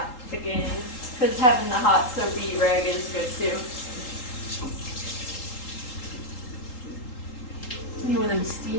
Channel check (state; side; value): late; right; 3.8 ms